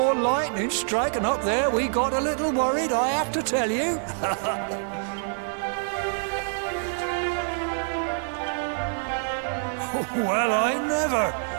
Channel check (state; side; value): silent; left; digital silence